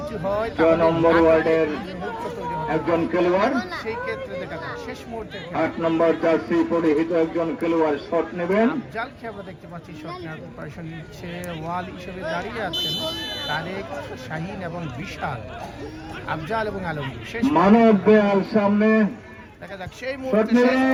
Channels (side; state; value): both; identical; correlation 1.00